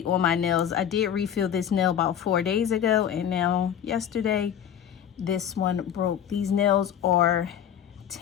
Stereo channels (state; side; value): quieter; right; 9.4 dB